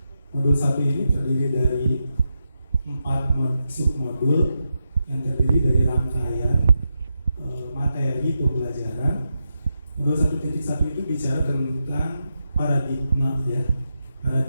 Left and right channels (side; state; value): both; inverted; correlation -0.87